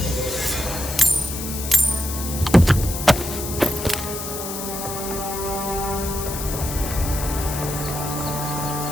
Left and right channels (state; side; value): noise; left; hiss, 7 dB below the sound